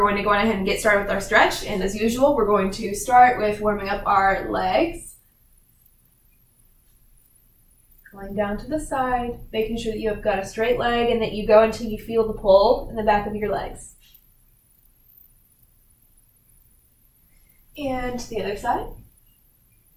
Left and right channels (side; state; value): both; identical; correlation 1.00